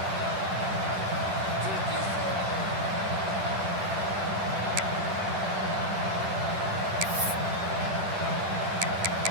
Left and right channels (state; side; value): late; left; 10 ms